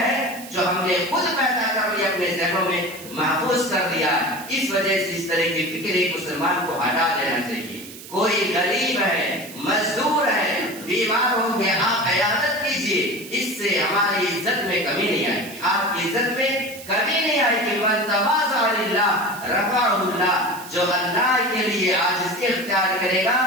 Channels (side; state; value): right; noise; hiss, 15 dB below the sound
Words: ہے جو ہم نے خود پیدا کر لی، اپنے ذہنوں میں محفوظ کر دیا۔ اس وجہ سے اس طرح کی فکر ایک مسلمان کو ہٹا دینا چاہیے۔ کوئی غریب ہے، مزدور ہے، بیمار ہوں گے، آپ عیادت کیجیے، اس سے ہماری عزت میں کمی نہیں آئے گی، آپ کی عزت میں کمی نہیں آئے گی۔ من تواضع للہ رفعہ اللہ، جو اللہ کے لیے عاجزی اختیار کرے گا،